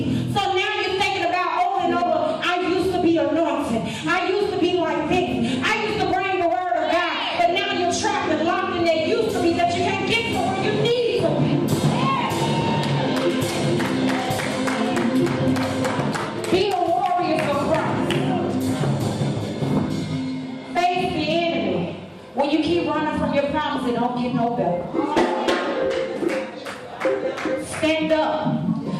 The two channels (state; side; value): identical; both; correlation 1.00